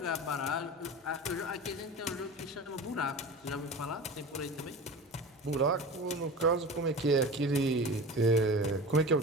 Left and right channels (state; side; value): normal; both; correlation 0.33